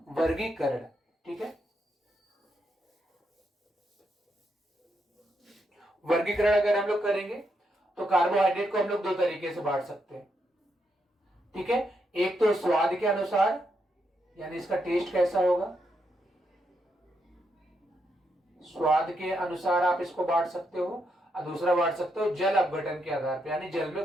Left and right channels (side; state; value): both; normal; correlation 0.80